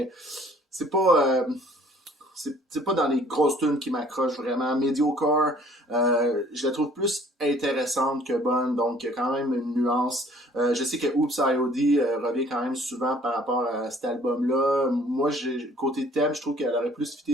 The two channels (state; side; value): normal; both; correlation 0.56